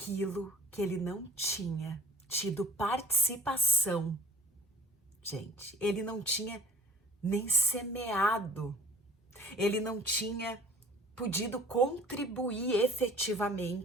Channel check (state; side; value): normal; both; correlation 0.48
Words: que ele não tinha tido participação. Gente, ele não tinha nem semeado, ele não tinha podido contribuir